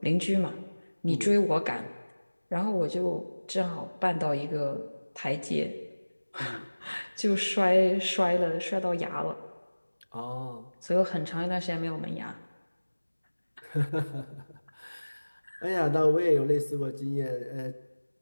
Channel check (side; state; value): both; inverted; correlation -1.00